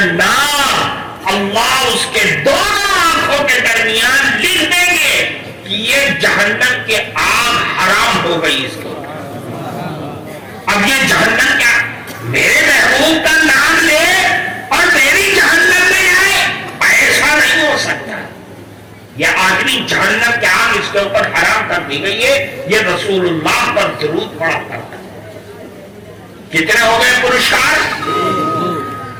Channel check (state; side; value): identical; both; correlation 1.00